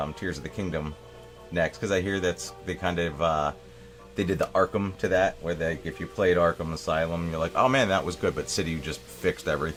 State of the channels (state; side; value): identical; both; correlation 1.00